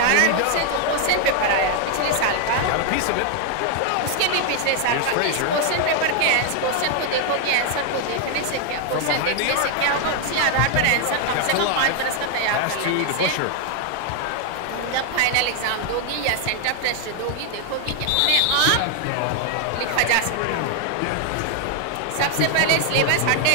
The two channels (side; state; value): both; different; correlation 0.00